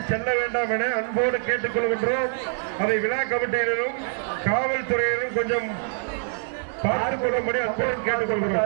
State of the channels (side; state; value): left; silent; digital silence